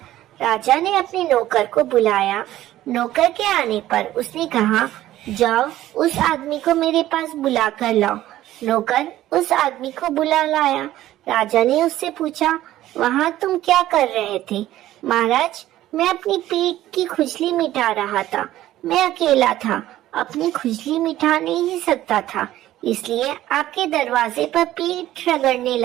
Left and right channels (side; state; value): left; quieter; 14.2 dB